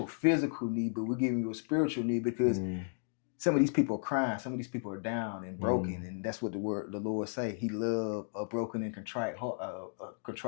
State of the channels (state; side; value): silent; right; digital silence